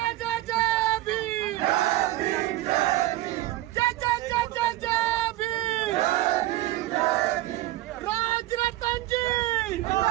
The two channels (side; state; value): left; quieter; 16.5 dB